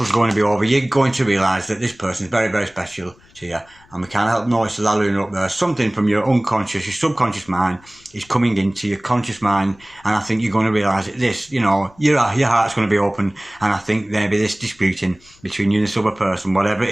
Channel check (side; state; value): left; noise; rumble, 28 dB below the sound